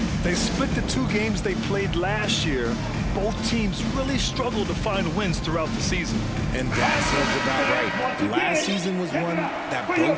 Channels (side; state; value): both; identical; correlation 1.00